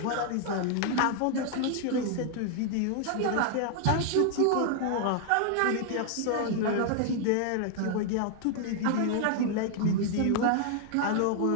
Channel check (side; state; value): both; different; correlation 0.00